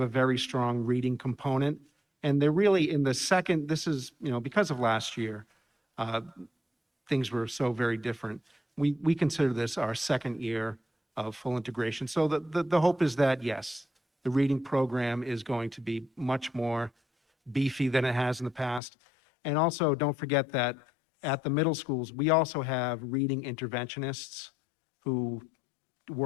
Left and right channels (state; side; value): drops out; right; at 18.8 s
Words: very strong reading component, and they're really in the second, this is, because of last year, things were so very different. We consider this our second year of full integration. So the hope is that, yes, the reading program is going to be much more beefy than it has in the past. And also, don't forget that at the middle schools, we also have reading interventionists who